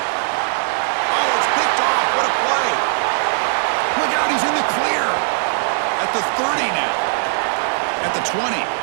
it's picked off. What a play. Look out, he's in the clear. At the 30 now. At the 20.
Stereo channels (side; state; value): left; silent; digital silence